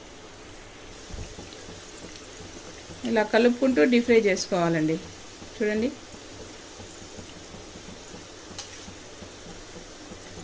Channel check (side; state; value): both; identical; correlation 1.00